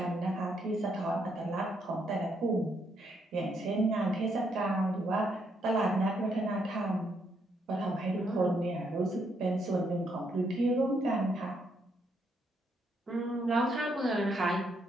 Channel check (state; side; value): normal; both; correlation 0.75